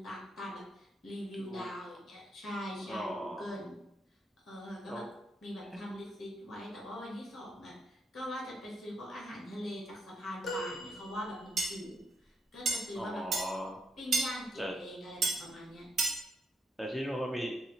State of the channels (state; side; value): normal; both; correlation 0.77